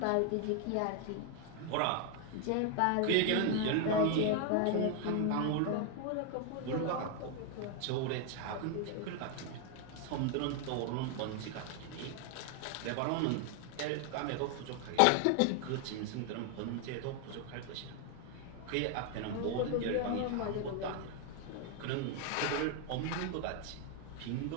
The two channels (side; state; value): both; different; correlation 0.00